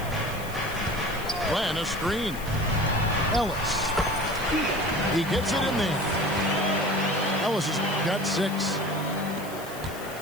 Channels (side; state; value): left; noise; hiss, 15 dB below the sound